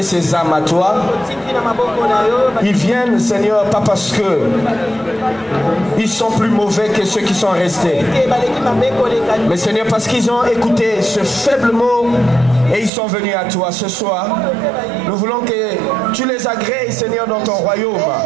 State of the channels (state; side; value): drops out; left; at 12.9 s